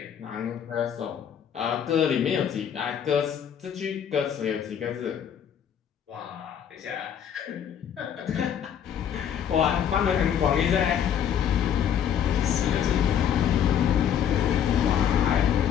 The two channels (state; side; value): quieter; right; 8.9 dB